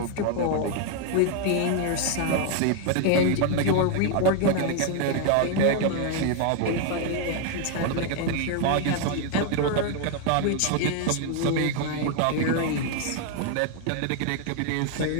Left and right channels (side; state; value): both; different; correlation 0.00